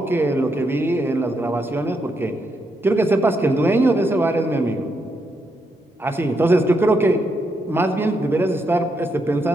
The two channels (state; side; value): normal; both; correlation 0.80